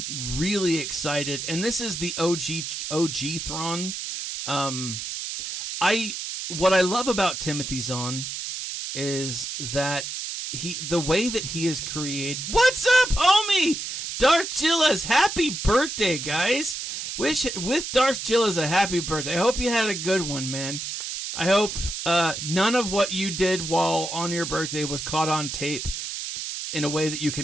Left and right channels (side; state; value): right; noise; hiss, 6 dB below the sound